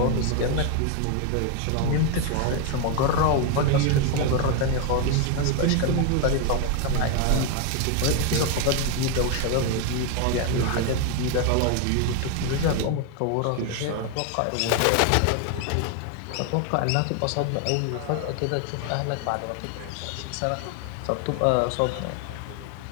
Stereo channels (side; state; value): both; different; correlation 0.01